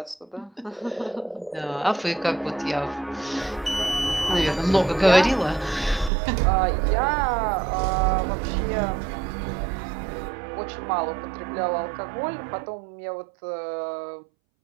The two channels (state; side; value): drops out; left; at 6.1 s